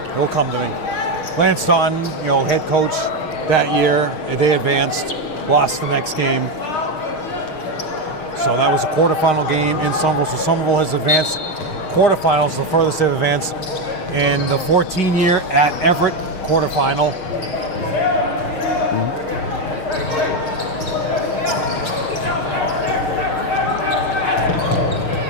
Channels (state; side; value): late; right; 6.4 ms